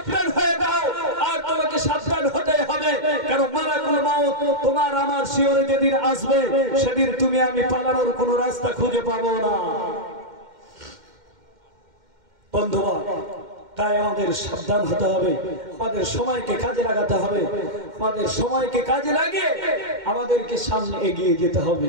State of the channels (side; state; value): left; late; 2.1 ms